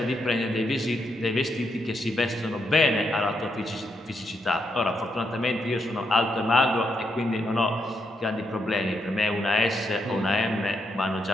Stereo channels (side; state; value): both; normal; correlation 0.80